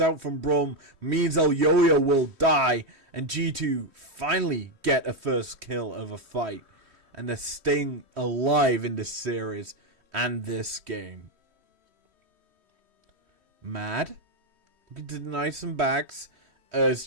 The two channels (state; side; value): late; left; 3.1 ms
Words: out from Brum. Means Elyoya will die. And G2 finally get a first kill of a fight. And they're staying alive in this series and this game. Mad. Looking to deny some backs. As